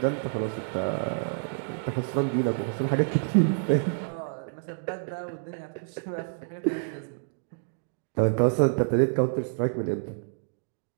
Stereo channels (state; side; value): silent; left; digital silence